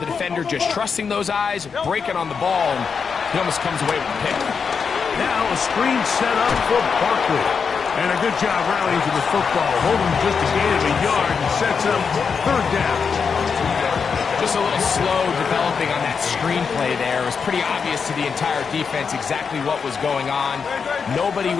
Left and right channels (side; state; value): right; quieter; 5.9 dB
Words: defender just trusting those eyes, breaking on the ball, and he almost comes away with a pick. Now a screen set up for Barkley. And a good job rallying to the football. Holding just a gain of a yard and sets up third down. Just a little slow developing on that screenplay there. It was pretty obvious to the entire defense exactly what was going on. Nobody